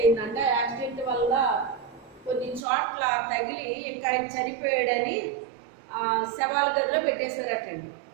యాక్సిడెంట్ వల్ల కొన్ని చోట్ల తగిలి ఇంకా ఆయన చనిపోయాడని శవాల గదిలో పెట్టేశారటండి.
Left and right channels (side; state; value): left; drops out; at 2.6 s